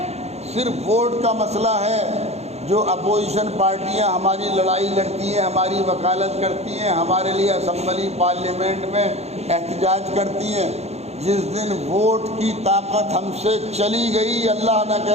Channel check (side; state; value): left; late; 0.31 ms